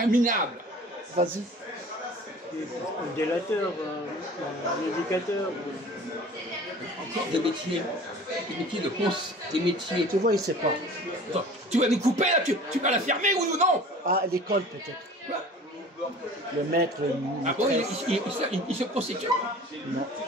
minable. Vas-y. Un délateur, un éducateur. Encore des métiers de cons, des métiers. Tu vois, il ne sait pas. Attends, tu vas nous couper là, tu vas la fermer oui ou non? Ah, à l'école peut-être. Quoi? Le maître, le Ah bon, il se prostitue? Non.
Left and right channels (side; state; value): both; normal; correlation 0.43